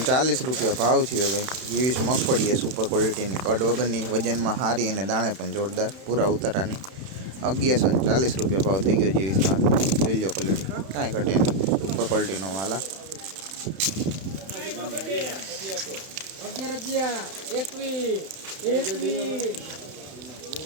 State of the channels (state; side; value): late; left; 31 ms